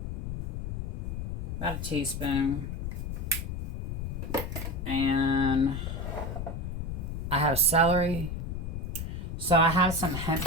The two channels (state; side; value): noise; left; rumble, 4 dB below the sound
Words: About a teaspoon. And I have celery. So I have some hemp